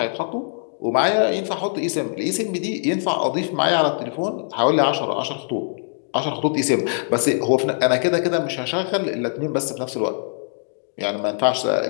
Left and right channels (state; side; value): silent; right; digital silence